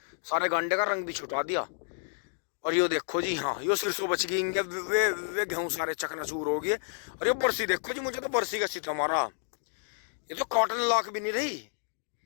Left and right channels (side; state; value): right; silent; digital silence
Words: सारे गांडे का रंग भी छुटा दिया। और यो देखो जी, हाँ यो सिरसों बच गई वे गेहूं सारे चकनाचूर हो गए। और ये बरसी देखो जी, मुझे तो बरसी का सीता मारा। ये तो कॉटन लाख भी नहीं रही,